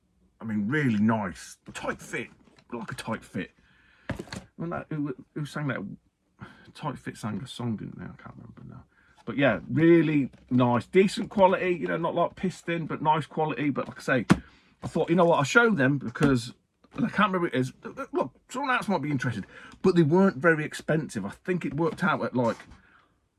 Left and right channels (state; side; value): identical; both; correlation 1.00